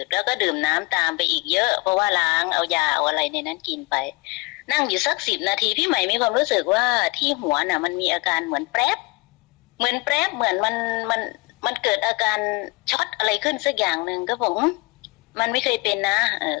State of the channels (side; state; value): right; quieter; 24.3 dB